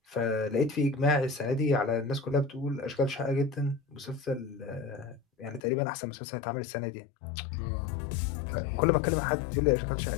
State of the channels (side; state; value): right; drops out; at 5.6 s